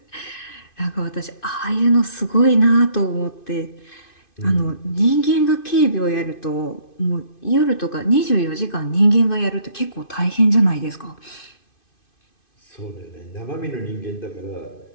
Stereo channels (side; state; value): right; late; 2.5 ms